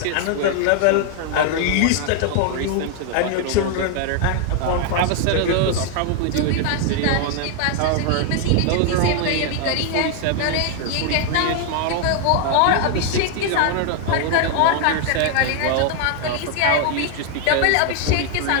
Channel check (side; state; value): both; different; correlation 0.00